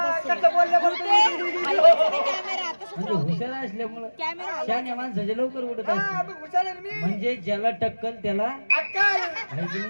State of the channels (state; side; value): inverted; both; correlation -1.00